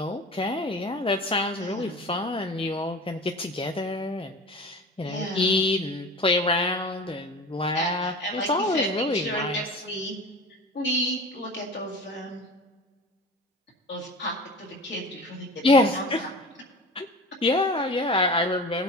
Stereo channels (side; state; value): both; normal; correlation 0.35